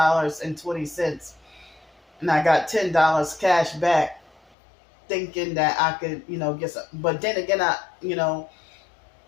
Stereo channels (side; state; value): right; drops out; at 4.4 s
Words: and I got $10 cash back, thinking that I could, get some. But then again, I